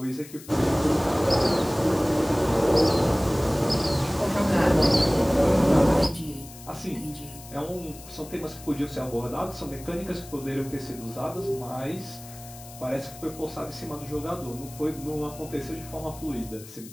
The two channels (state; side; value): noise; left; hiss, 17 dB below the sound